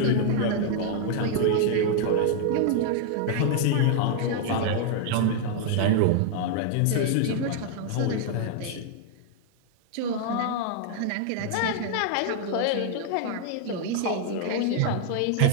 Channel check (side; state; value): both; different; correlation 0.00